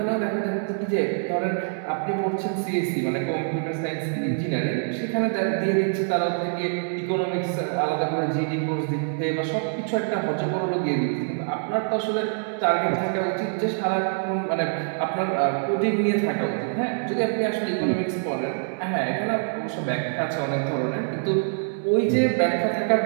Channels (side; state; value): left; silent; 62 dB below the other